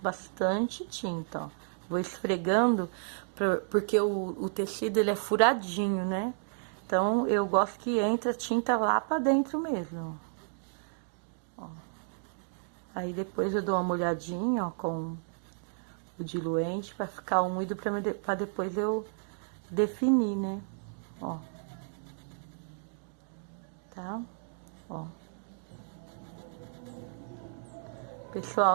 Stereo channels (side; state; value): left; silent; digital silence